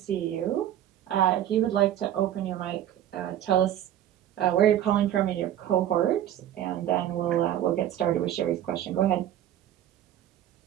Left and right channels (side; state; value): left; quieter; 11.6 dB